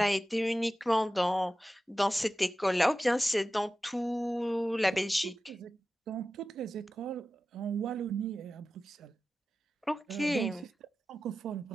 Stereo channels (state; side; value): normal; both; correlation 0.94